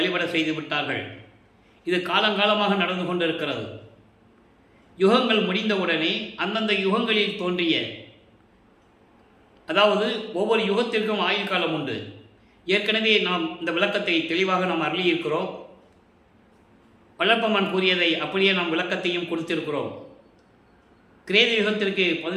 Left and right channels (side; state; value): both; identical; correlation 1.00